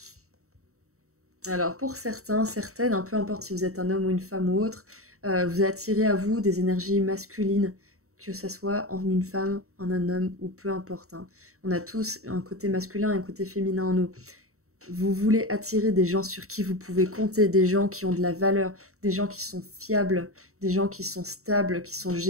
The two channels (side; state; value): left; late; 0.64 ms